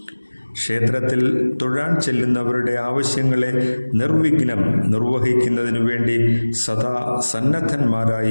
ക്ഷേത്രത്തിൽ തൊഴാൻ ചെല്ലുന്നവരുടെ ആവശ്യങ്ങളെ നിർവിഘ്നം നിർവഹിക്കുന്നതിനു വേണ്ടി സദാ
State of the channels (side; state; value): both; inverted; correlation -1.00